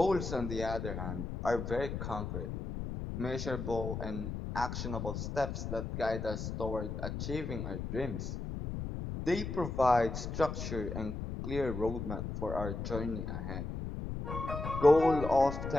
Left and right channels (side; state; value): left; noise; rumble, 5 dB below the sound